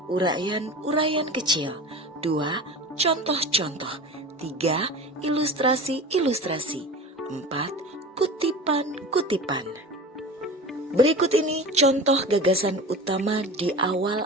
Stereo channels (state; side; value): normal; both; correlation 0.34